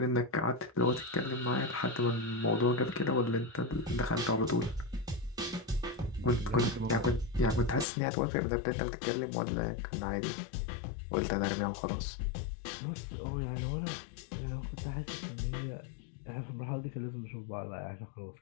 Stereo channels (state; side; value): drops out; right; at 7.9 s